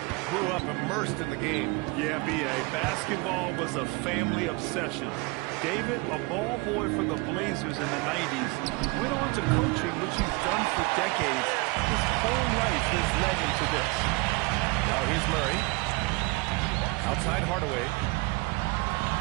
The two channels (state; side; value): quieter; left; 26.5 dB